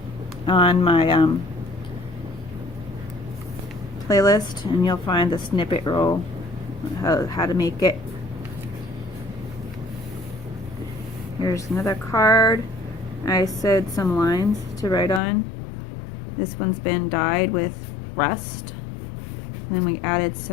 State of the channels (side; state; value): right; drops out; at 15.2 s